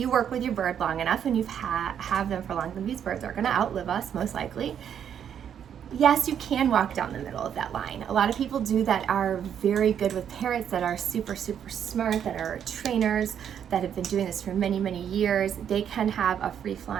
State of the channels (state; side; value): quieter; left; 8.8 dB